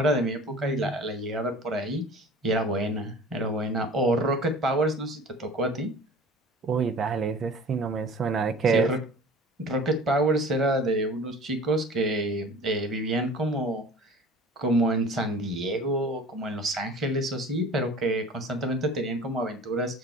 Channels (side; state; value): both; normal; correlation 0.43